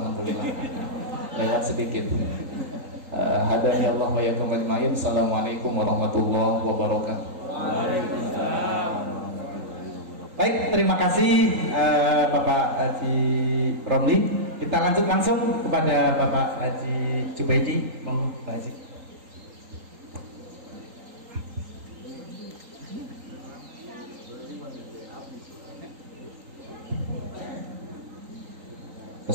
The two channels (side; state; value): left; late; 3.8 ms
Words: alhamdulillah. Lewat sedikit. Hadani Allah wa yakum ajmain. Assalamualaikum warahmatullahi wabarakatuh. Baik, terima kasih Bapak Haji Romli. Kita lanjut langsung kepada Bapak Haji Jubaidi. Monggo Pak Haji.